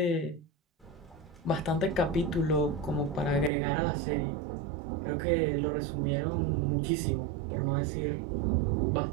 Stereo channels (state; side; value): drops out; left; at 3.5 s